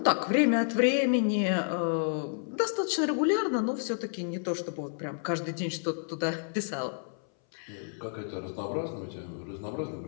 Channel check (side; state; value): right; silent; 58 dB below the other